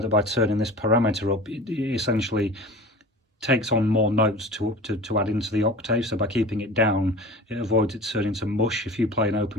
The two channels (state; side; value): normal; both; correlation 0.38